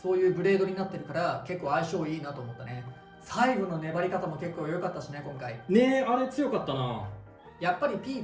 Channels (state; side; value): identical; both; correlation 1.00